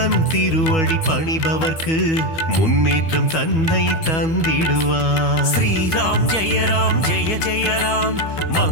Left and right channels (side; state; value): right; late; 12 ms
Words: திருவடி பணிபவர்க்கு முன்னேற்றம் தன்னை தந்திடுவார். ஸ்ரீராம் ஜெய ராம் ஜெய ஜெய ராம்,